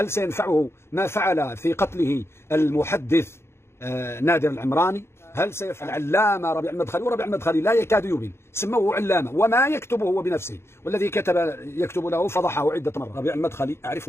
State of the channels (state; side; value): late; right; 0.12 ms